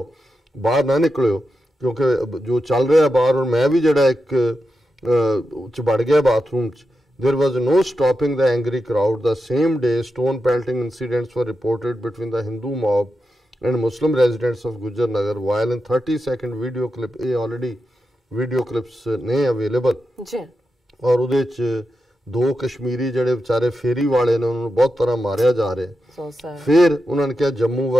ਬਾਹਰ ਨਾ ਨਿਕਲਿਓ, ਕਿਉਂਕਿ ਜੋ ਚੱਲ ਰਿਹਾ ਬਾਹਰ। ਔਰ ਮੈਂ ਵੀ ਜਿਹੜਾ ਇੱਕ 'ਚ ਵੜ ਗਿਆ ਬਾਥਰੂਮ 'ਚ। There was no stopping the angry crowd. The same day, stone pelting incidents were reported between the Hindu mob and Muslim residents of Gujar Nagar, while in 30-second video clip, already video clips ne available ji, और ਉਹਦੇ 'ਚ 2 ਕਸ਼ਮੀਰੀ ਜਿਹੜੇ ਵਿਚਾਰੇ ਫੇਰੀ ਵਾਲੇ ਨੇ, ਉਹਨਾਂ ਨੂੰ ਬਹੁਤ ਤਰ੍ਹਾਂ ਮਾਰਿਆ ਜਾ ਰਿਹਾ। ਫਿਰ ਉਹਨਾਂ ਨੇ ਕਿਹਾ ਜੰਮੂ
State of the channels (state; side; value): normal; both; correlation 0.89